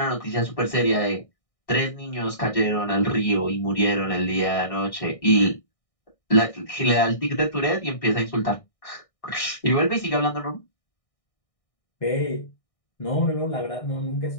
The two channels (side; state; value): right; late; 1.6 ms